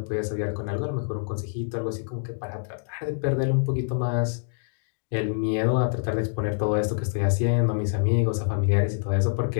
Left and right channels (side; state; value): right; silent; digital silence